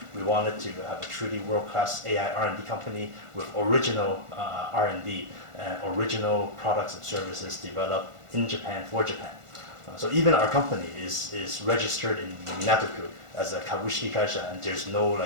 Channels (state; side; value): late; left; 1.4 ms